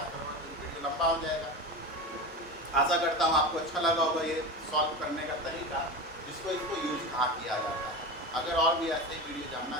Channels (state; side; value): normal; both; correlation 0.25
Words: करूँगा, तो वीडियो लंबा हो जाएगा। आशा करता हूँ आपको अच्छा लगा होगा ये सॉल्व करने का तरीका, इसको यूज कहाँ किया जाता है। अगर और भी ऐसे वीडियो जानना